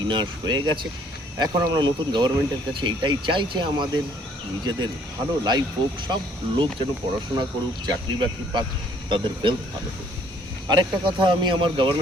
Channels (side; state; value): both; normal; correlation 0.61